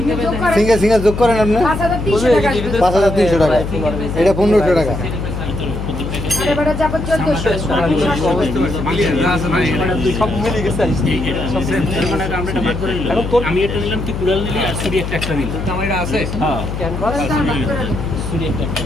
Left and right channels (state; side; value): noise; left; hum, 5 dB below the sound